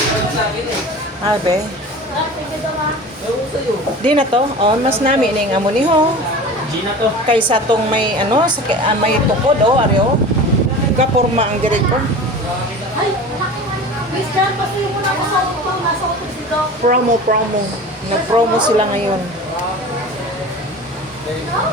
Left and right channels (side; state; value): both; normal; correlation 0.36